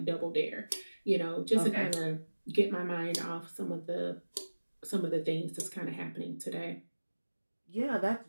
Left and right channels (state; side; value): inverted; both; correlation -1.00